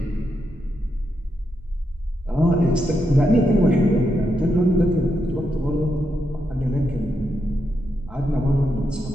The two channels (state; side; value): normal; both; correlation 0.83